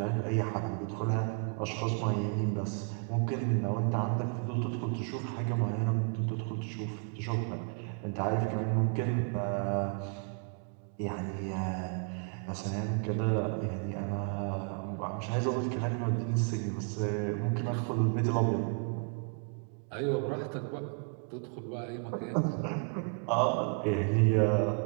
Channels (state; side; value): quieter; left; 39.8 dB